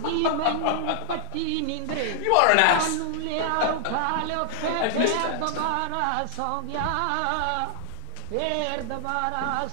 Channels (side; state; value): both; different; correlation 0.00